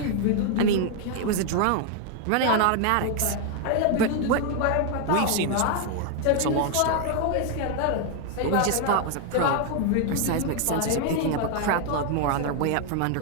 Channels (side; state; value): both; different; correlation 0.01